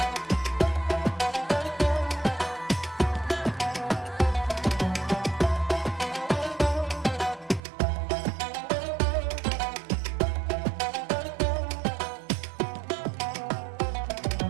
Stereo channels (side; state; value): left; drops out; at 7.6 s